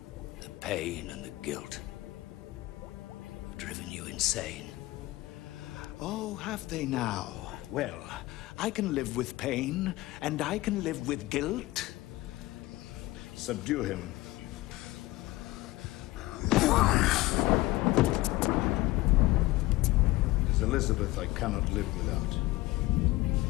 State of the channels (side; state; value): right; quieter; 19.1 dB